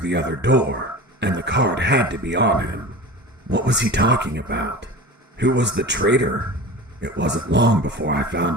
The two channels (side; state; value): both; normal; correlation 0.34